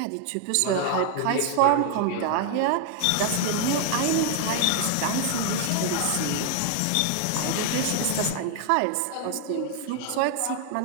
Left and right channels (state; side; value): different; both; correlation 0.00